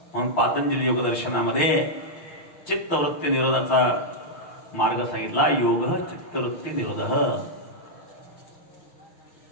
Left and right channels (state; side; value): late; right; 6.5 ms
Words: म्हणून पातंजली योगदर्शनामध्ये चित्तवृत्ती निरोधाचा मार्ग सांगितला. योग चित्तवृत्ती निरोध.